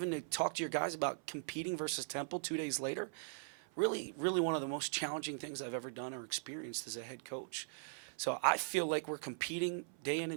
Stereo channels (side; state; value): left; silent; 51 dB below the other